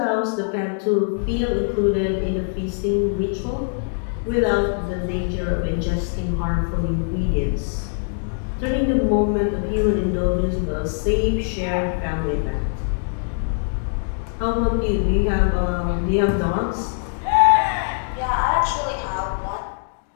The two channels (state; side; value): silent; right; digital silence